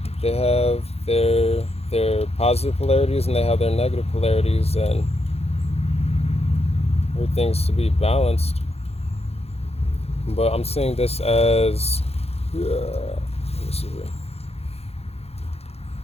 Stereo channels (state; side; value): late; right; 0.29 ms